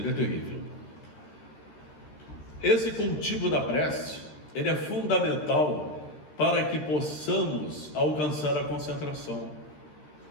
é terrível. Esse cultivo da prece, ele é fundamental para que possamos alcançar a concentração.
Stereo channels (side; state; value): right; late; 13 ms